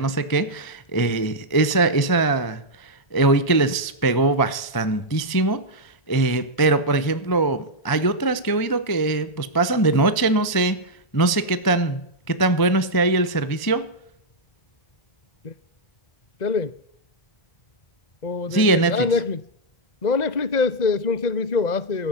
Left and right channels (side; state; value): right; late; 1.0 ms